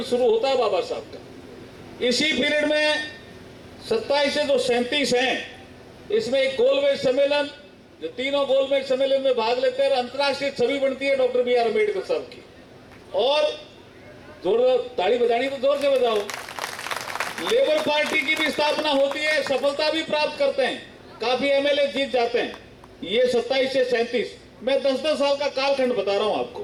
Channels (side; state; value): both; identical; correlation 1.00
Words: शुरू होता है बाबा साहब का। इसी पीरियड में 27 से जो 37 हैं, इसमें एक गोलमेज सम्मेलन, जो तीनों गोलमेज सम्मेलन में भाग लेते हैं, अंतर्राष्ट्रीय छवि बनती है डॉक्टर BR अम्बेडकर साहब की। और जोर ताली बजानी तो जोर से बजाओ। लेबर पार्टी की भी स्थापना होती है, सफलता भी प्राप्त करते हैं, काफी MLA जीत जाते हैं। ये 27 से 37, मैं 10-10 साल का कालखंड बता रहा हूं